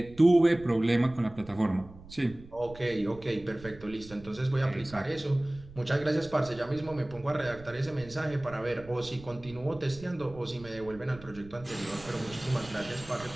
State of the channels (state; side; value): noise; right; rumble, 19 dB below the sound